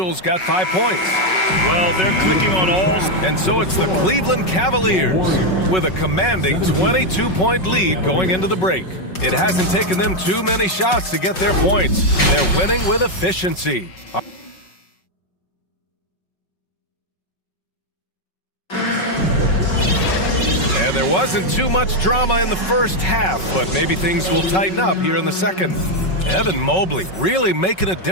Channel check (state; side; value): late; right; 5.4 ms